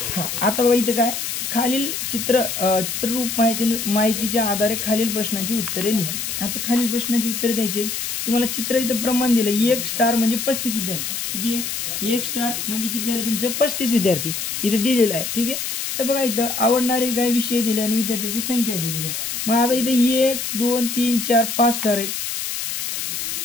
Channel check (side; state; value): left; noise; hiss, 3 dB below the sound